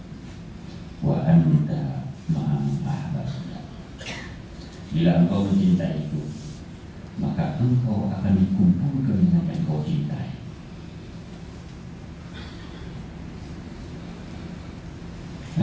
wa anta ma'aman ahbabta. Bila engkau mencintai itu, maka engkau akan dikumpulkan dengan yang engkau cintai.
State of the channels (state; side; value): identical; both; correlation 1.00